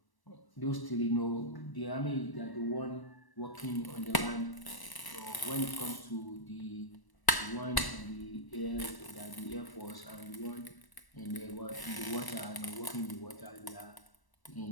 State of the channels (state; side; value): late; right; 1.1 ms